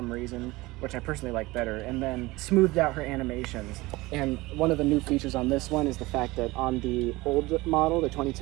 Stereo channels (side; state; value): left; quieter; 20.8 dB